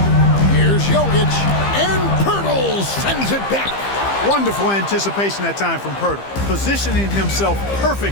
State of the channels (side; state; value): right; late; 15 ms